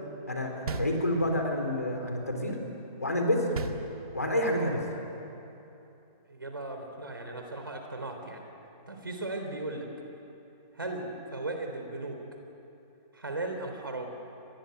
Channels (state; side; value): inverted; both; correlation -0.50